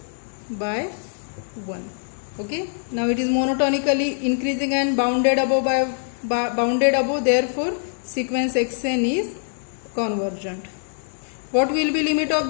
by 1. Okay, now it is monotonically increasing and bounded above by bounded above, therefore sequence xn is convergent. What will be limit of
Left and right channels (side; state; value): right; silent; digital silence